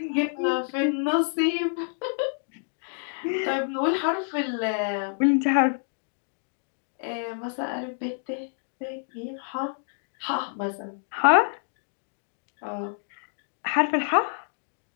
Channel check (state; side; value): silent; right; digital silence